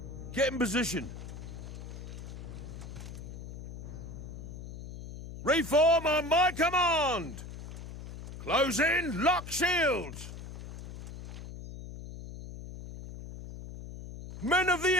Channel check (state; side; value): noise; left; hum, 11 dB below the sound